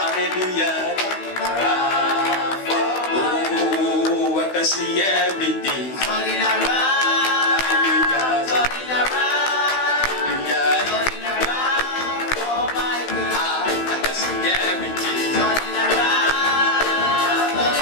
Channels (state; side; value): late; right; 16 ms